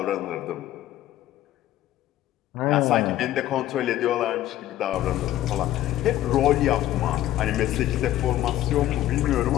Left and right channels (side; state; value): right; quieter; 13.5 dB